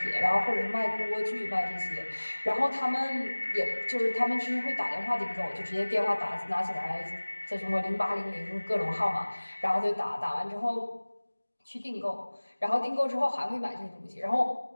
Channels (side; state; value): both; inverted; correlation -1.00